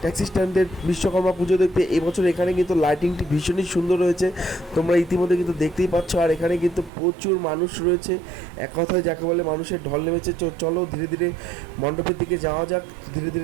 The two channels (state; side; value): drops out; left; at 6.9 s